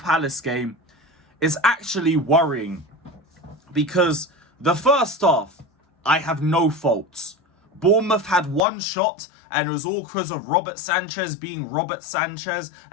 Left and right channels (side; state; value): right; drops out; at 8.6 s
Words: game. Is actually worrying. Because the first half, I have no faults. Bournemouth had one shot, and it was all because of Robert Sanchez being Robert Sanchez.